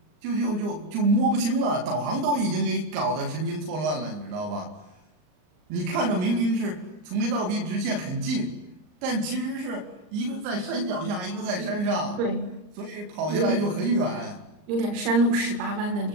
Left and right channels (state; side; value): late; left; 39 ms